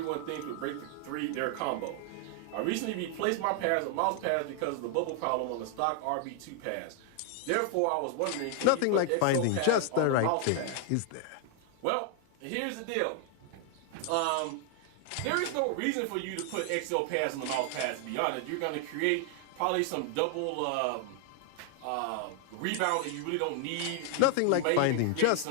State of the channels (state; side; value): different; both; correlation 0.00